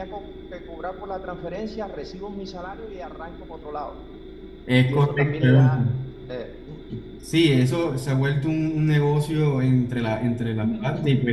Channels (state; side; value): identical; both; correlation 1.00